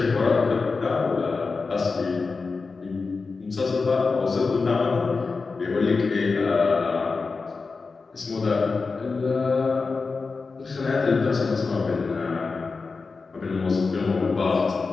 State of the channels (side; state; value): right; quieter; 4.3 dB